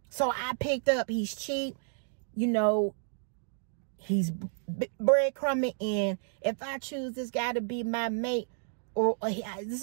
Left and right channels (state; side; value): silent; left; digital silence